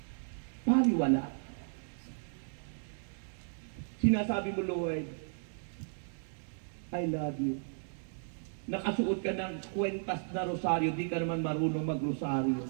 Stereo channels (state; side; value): silent; left; digital silence